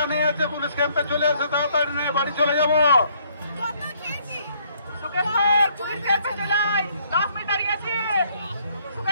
আছে পুলিশ ক্যাম্পে চলে এসো, তাড়াতাড়ি নিয়ে বাড়ি চলে যাবো। পুলিশ ক্যাম্পে চলে আয়, 10 মিনিট দাঁড়িয়ে আছি।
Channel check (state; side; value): inverted; both; correlation -0.66